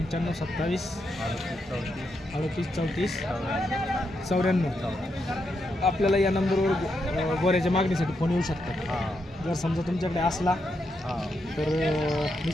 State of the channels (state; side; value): normal; both; correlation 0.82